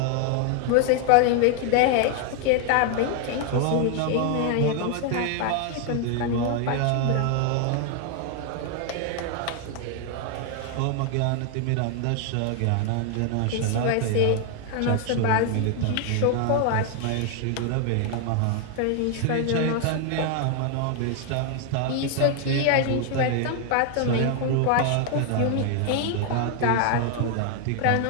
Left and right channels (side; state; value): both; different; correlation 0.00